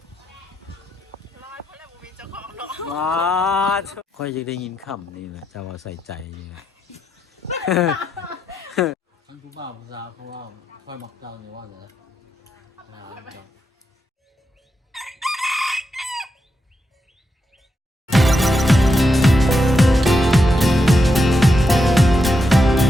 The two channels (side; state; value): both; normal; correlation 0.84